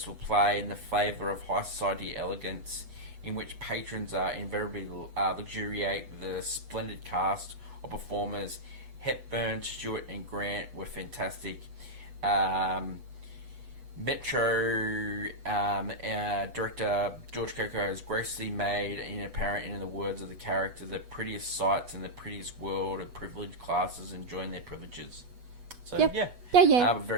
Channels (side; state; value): left; late; 8.2 ms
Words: play, and the flavour of high society elegance, in which patrons invariably luxuriate the splendid cast of performers. Hepburn, Stewart, and Grant were fantastic. Metro director George Cukor has graciously made apparent in the words of the character the prettiest sights in the prettiest world of privileged classes enjoying their privileges. So